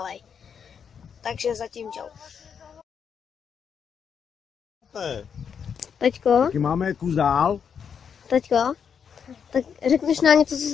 Takže zatím čau. Teďko, Taky máme kus dál. teďko, tak řekneš nám něco, co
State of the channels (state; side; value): quieter; right; 7.1 dB